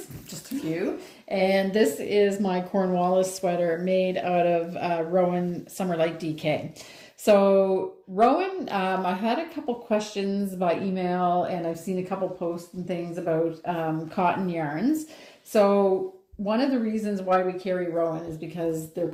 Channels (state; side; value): identical; both; correlation 1.00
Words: just a few. And this is my Cornwallis sweater made out of Rowan Summerlight DK. So Rowan, I had a couple questions by email, and I've seen a couple posts and things about cotton yarns. So one of the reasons why we carry Rowan is because their